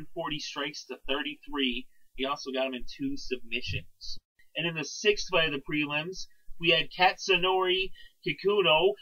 strikes to 33. He also got him in 2 submissions. And in the sixth fight of the prelims, we had Katsunori Kikuno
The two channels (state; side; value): identical; both; correlation 1.00